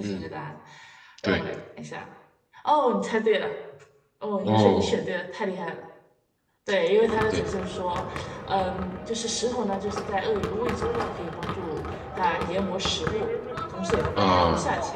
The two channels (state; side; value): identical; both; correlation 1.00